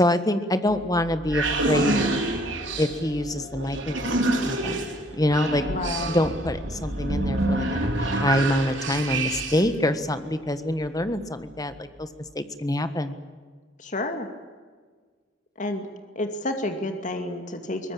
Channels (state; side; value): normal; both; correlation 0.61